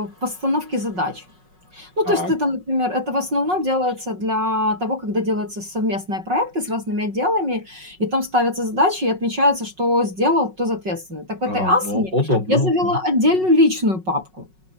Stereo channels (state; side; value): late; left; 5.4 ms